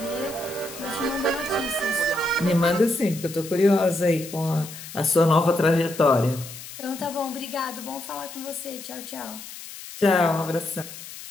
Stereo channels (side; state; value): left; noise; hiss, 13 dB below the sound